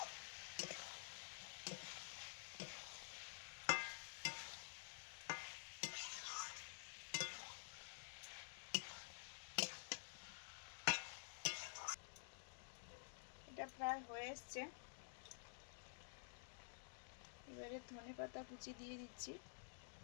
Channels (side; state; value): right; silent; digital silence